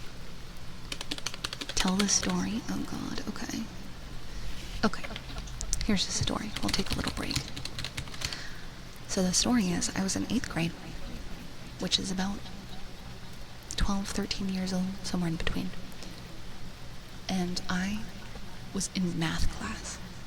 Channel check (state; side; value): identical; both; correlation 1.00